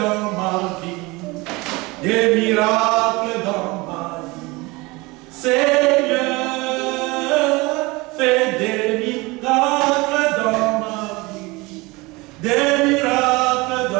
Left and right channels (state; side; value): quieter; left; 23.6 dB